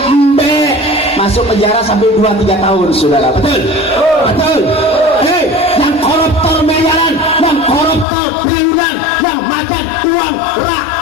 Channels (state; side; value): drops out; right; at 8.1 s